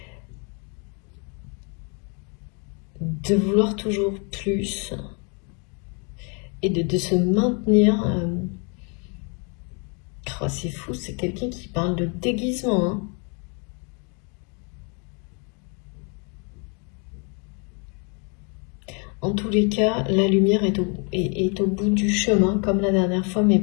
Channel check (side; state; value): right; quieter; 35.4 dB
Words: De vouloir toujours plus et de se maintenir. Oh, c'est fou, c'est quelqu'un qui parle de déguisement. Hein. En tous les cas, la lumière est au bout du chemin, comme la dernière fois, mais